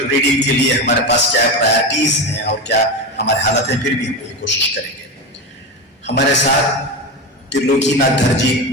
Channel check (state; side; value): normal; both; correlation 0.20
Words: रीडिंग के लिए हमारे पास क्या प्रायोरिटीज़ हैं और क्या हमारे हालत हैं, फिर भी हम ये कोशिश करेंगे। हमारे साथ त्रिलोकीनाथ धरजी